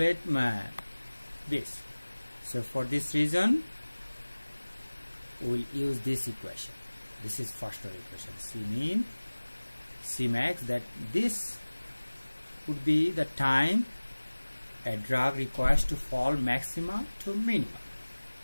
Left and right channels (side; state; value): both; inverted; correlation -1.00